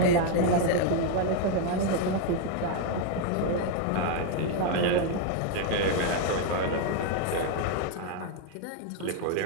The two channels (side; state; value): both; different; correlation 0.01